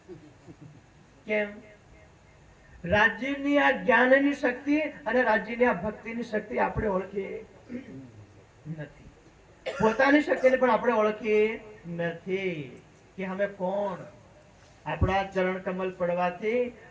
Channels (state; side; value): identical; both; correlation 1.00